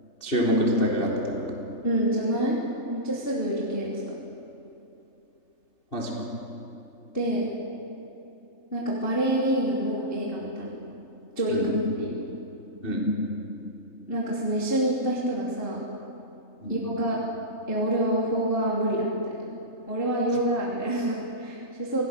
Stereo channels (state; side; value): late; right; 3.3 ms